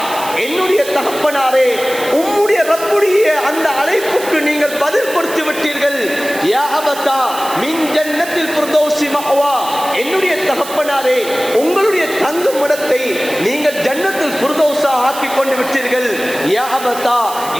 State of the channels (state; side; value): noise; right; hiss, 12 dB below the sound